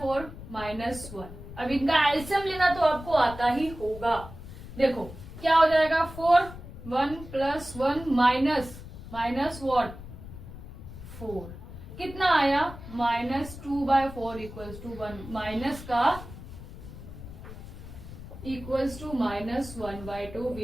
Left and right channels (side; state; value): left; noise; rumble, 13 dB below the sound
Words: माइनस 1। अब इनका एलसीएम लेना तो आपको आता ही होगा। देखो क्या हो जाएगा, 4 1 प्लस 1 माइनस वॉट 4, कितना आया -2/4 इक्वल्स टू 1, माइनस का equals to -1/2